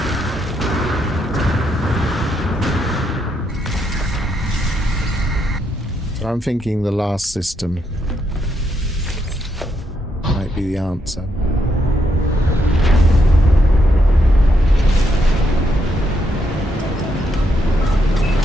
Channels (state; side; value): normal; both; correlation 0.78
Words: So I'm thinking the last system might be the answer.